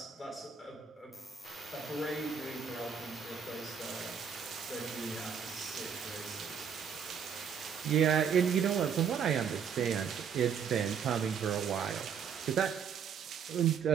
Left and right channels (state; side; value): quieter; left; 7.2 dB